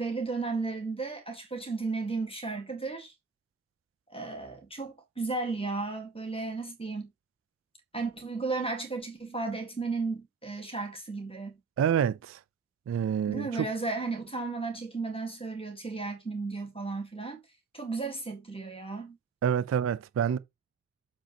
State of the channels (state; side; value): quieter; left; 5.1 dB